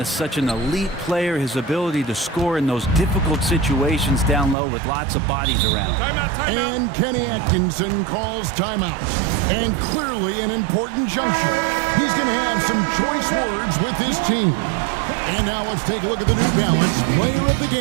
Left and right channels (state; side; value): drops out; left; at 4.5 s